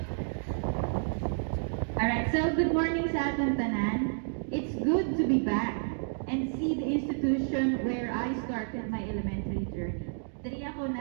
Alright, so good morning sa atong tanan. It's good to be back and see the institution where I started my elementary journey. Diri ako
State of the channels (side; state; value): left; silent; digital silence